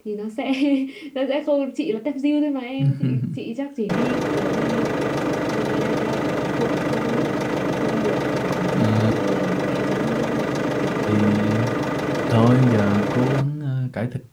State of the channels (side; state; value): both; identical; correlation 1.00